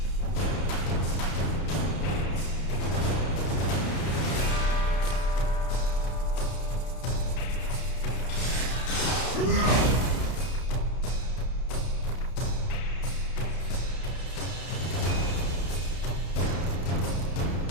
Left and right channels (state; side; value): late; right; 32 ms